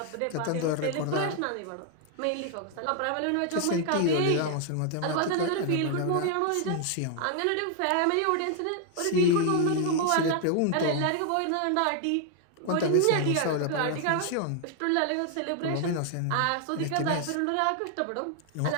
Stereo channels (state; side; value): different; both; correlation 0.00